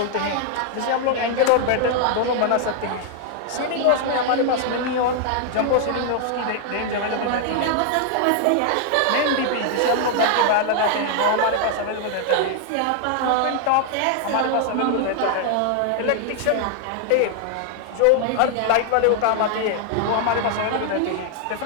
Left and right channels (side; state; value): both; different; correlation 0.00